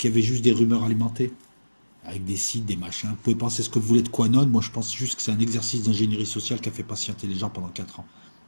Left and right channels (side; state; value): both; inverted; correlation -1.00